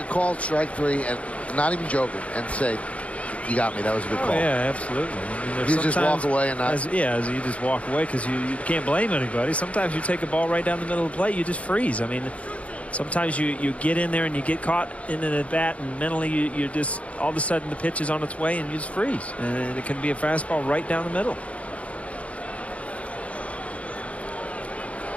call at strike 3 and not even joking and say, you got me, that was a good call? Yeah, absolutely. I mean, you just walk away and not. As you just walk away because you can't blame anybody. Sometimes you take a ball right down the middle of the plate, you just freeze. I mean, sometimes you get in there and you get caught in the bat, and mentally you just all of a sudden the pitch is on its way and you just freeze. And it can be a fastball right down the middle.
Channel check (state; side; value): late; right; 0.064 ms